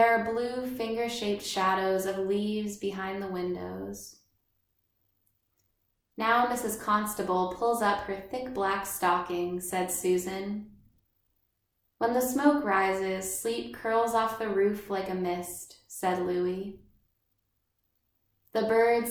are blue finger-shaped shadows of leaves behind the windows. Now Mrs. Constable pulls up her thick black stocking, said Susan. When the smoke rises, sleep curls off the roof like a mist, said Louis. The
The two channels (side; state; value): both; identical; correlation 1.00